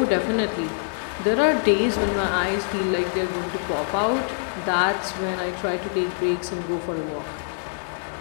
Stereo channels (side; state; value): right; silent; digital silence